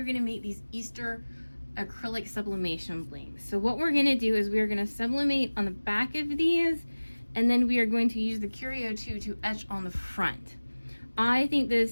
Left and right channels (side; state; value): both; inverted; correlation -1.00